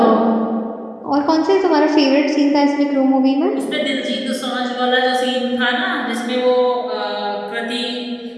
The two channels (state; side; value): identical; both; correlation 1.00